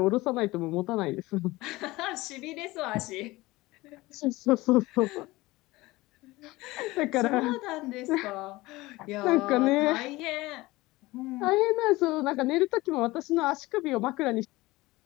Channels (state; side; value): quieter; right; 20.1 dB